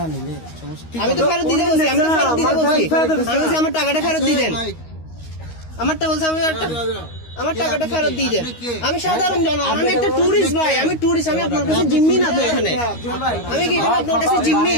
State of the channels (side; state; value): right; late; 13 ms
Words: নিলে সমস্যা। আমি তো ফেরত দিতে বলছি, আমি তো ফেরত দিতে বলছি, আমি বলছি আমার টাকাটা ফেরত দিয়ে দেন। ভাই, আমারটা বলছে আমি আমার টাকাটা আপনি ফেরত কে? দিয়ে দেন। আপনি কে? আমি সাধারণ জনগণ, আমি একটা টুরিস্ট ভাই, আমি টুরিস্ট, আমি আপনার কাছে জিম্মি না তো এখানে। আমি কি এখানে আপনার কাছে জিম্মি?